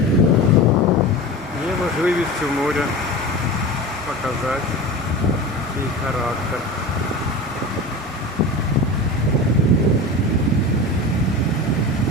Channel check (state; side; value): normal; both; correlation 0.30